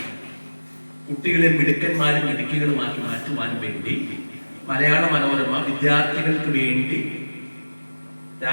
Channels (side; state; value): both; inverted; correlation -1.00